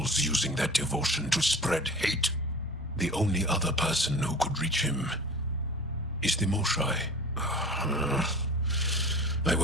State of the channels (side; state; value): both; normal; correlation 0.39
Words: using that devotion to spread hate. The only other person who could reach him is the Moshai. I